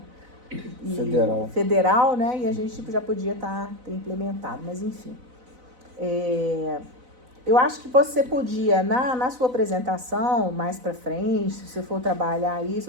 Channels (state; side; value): late; left; 4.0 ms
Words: federal, né? E a gente já podia ter implementado, mas enfim. Eu acho que você podia, na sua apresentação, mais para frente, se você for trabalhar